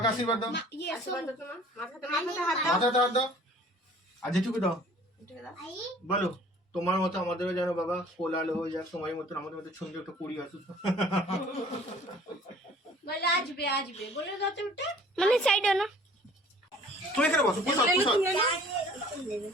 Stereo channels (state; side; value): normal; both; correlation 0.51